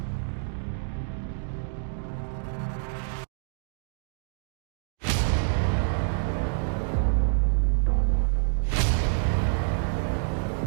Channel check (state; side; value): silent; left; digital silence